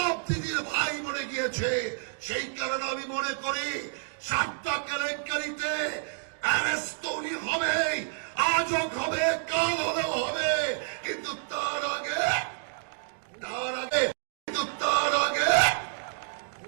দিদির ভাই মরে গিয়েছে। সেই কারণে আমি মনে করি সাতটা কেলেঙ্কারিতে অ্যারেস্ট তো উনি হবেই, আজও হবে, কাল হলেও হবে, কিন্তু তার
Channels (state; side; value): silent; left; digital silence